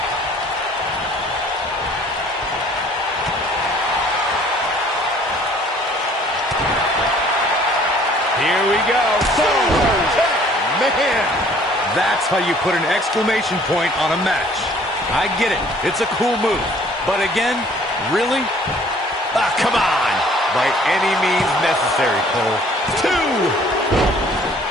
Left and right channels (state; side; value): normal; both; correlation 0.56